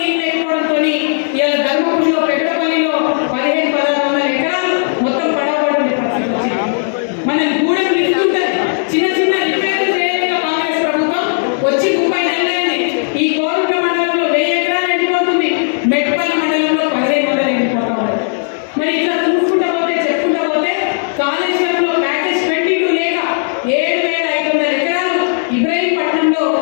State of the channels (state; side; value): silent; right; digital silence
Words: లేకపోవడంతో ఇవాళ ధర్మపురిలో, పెద్దపల్లిలో 1500-1600 ఎకరాలు మొత్తం పడవబడి పరిస్థితి వచ్చింది. మన గూడెం నిలుస్తుంటుంది, చిన్న చిన్న రిపేర్లు చేయలేక కాంగ్రెస్ ప్రభుత్వం వచ్చి 30 నెలలైంది. ఈ కోరుట్ల మండలంలో 1000 ఎకరాలు ఎండిపోతుంది, మెట్పల్లి మండలంలో 1500 ఎండిపోతా ఉంది. మరి ఇట్లా చూసుకుంటా పోతే, చెప్పుకుంటా పోతే కాళేశ్వరంలో ప్యాకేజ్ 22 లేక 7500 ఎకరాలు ఇబ్రహీంపట్నంలో